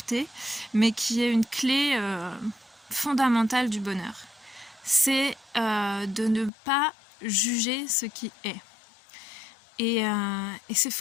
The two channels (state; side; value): drops out; right; at 6.5 s